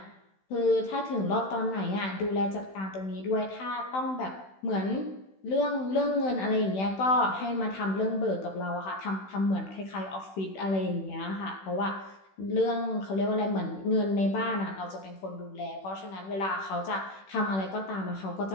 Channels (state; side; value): late; right; 16 ms